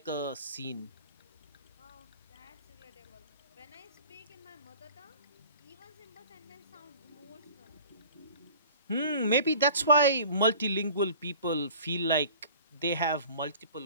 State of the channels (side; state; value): both; inverted; correlation -0.44